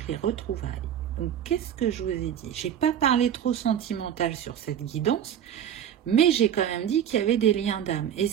les retrouvailles. Donc, qu'est-ce que je vous ai dit? Je n'ai pas parlé trop sentimental sur cette guidance, mais j'ai quand même dit qu'il y avait des liens d'âme. Et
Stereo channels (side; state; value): left; quieter; 9.6 dB